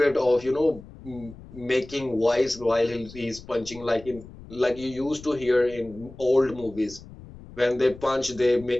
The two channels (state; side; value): noise; left; rumble, 18 dB below the sound